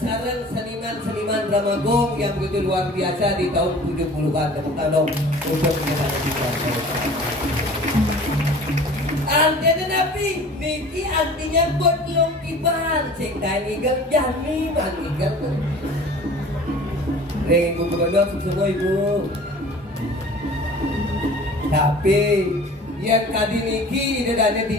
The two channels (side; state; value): both; normal; correlation 0.44